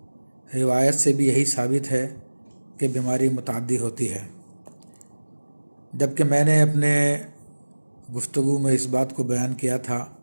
روایت سے بھی یہی ثابت ہے کہ بیماری متعدی ہوتی ہے، جبکہ میں نے اپنے گفتگو میں اس بات کو بیان کیا تھا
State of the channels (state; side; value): inverted; both; correlation -1.00